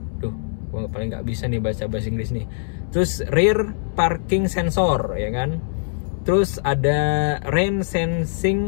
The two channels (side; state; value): right; silent; 64 dB below the other